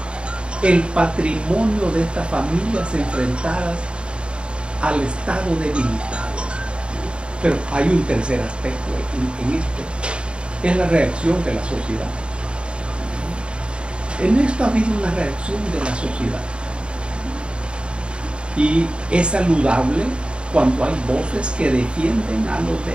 el patrimonio de estas familias enfrentadas al Estado debilitado. Pero hay un tercer aspecto en esto, es la reacción de la sociedad. En esto ha habido una reacción de la sociedad y es saludable cuando hay voces que defienden a los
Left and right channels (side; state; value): left; late; 0.054 ms